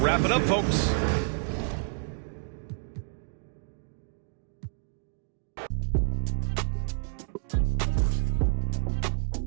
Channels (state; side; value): silent; left; 58 dB below the other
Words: it up, folks.